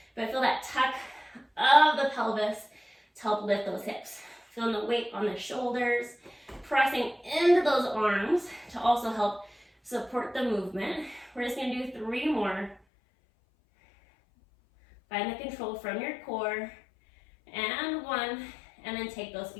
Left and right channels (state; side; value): drops out; right; at 12.8 s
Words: but feel that tuck of the pelvis to help lift those hips. Feeling the weight on the shoulders, pressing into those arms to also help support the movement. We're just gonna do 3 more. Find the control from your core, and 1, and then take those